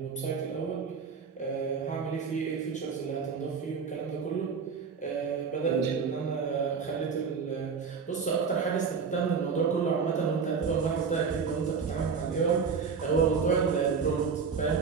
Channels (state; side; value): quieter; left; 5.8 dB